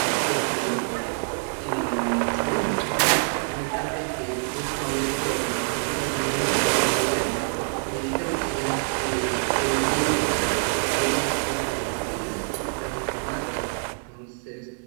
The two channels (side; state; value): left; silent; 61 dB below the other